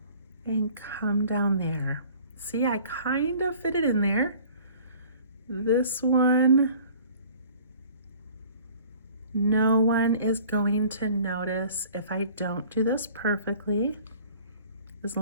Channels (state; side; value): inverted; both; correlation -0.50